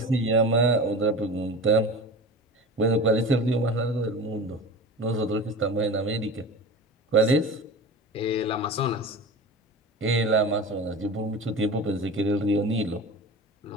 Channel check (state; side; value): normal; both; correlation 0.33